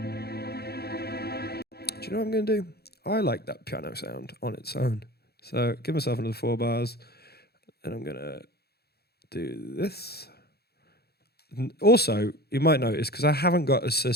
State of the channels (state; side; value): late; right; 0.46 ms